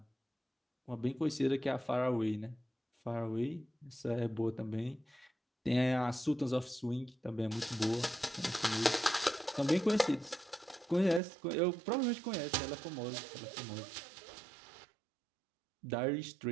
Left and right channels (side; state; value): left; drops out; at 11.2 s